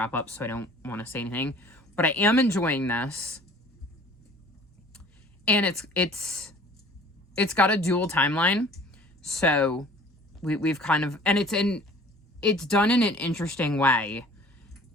up, so I don't want to say anything. But I am enjoying this. And it's got a dual timeline. So we've kind of, and it's done in an interesting way,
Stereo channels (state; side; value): normal; both; correlation 0.49